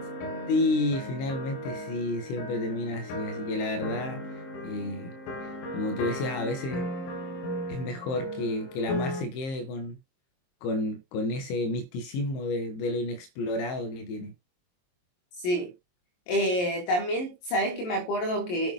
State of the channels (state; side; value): late; right; 23 ms